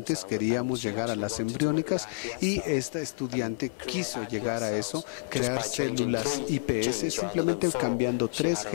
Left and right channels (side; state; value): right; silent; digital silence